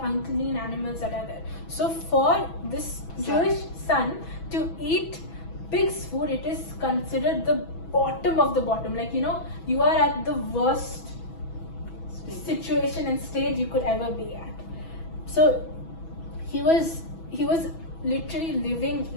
animals that are there. So for this Jewish son to eat pig's food, it is considered the bottom of the bottom. Like, you are at the worst situation and stage you could ever be at. So he was literally living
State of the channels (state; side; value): late; right; 6.1 ms